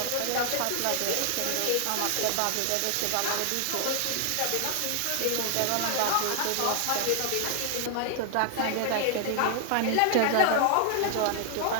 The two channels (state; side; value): different; both; correlation 0.00